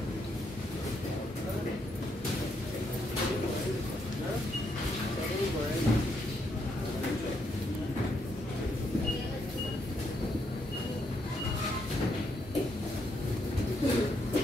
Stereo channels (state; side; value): normal; both; correlation 0.77